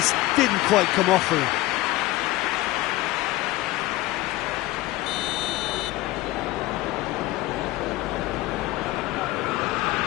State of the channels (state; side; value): quieter; right; 17.7 dB